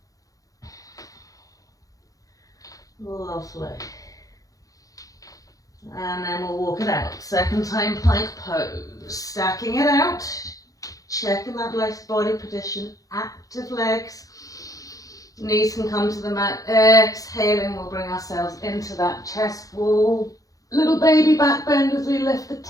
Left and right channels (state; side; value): late; right; 0.17 ms